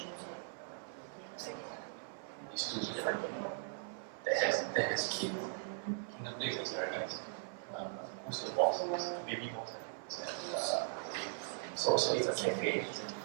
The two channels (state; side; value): silent; left; 52 dB below the other